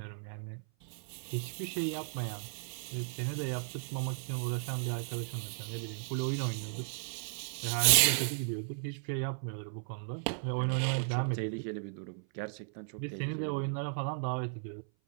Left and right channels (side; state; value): left; silent; 54 dB below the other